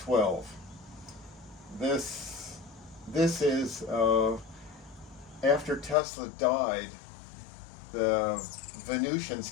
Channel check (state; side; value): drops out; right; at 6.0 s